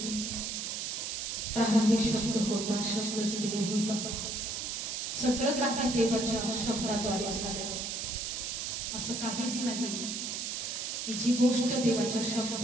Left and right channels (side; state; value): right; noise; hiss, 3 dB below the sound